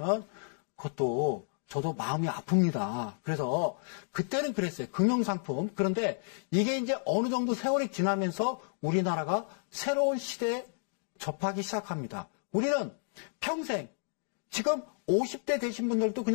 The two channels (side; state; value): right; silent; digital silence